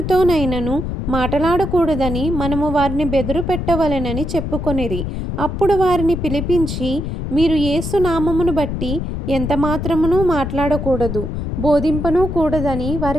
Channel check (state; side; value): noise; left; rumble, 4 dB below the sound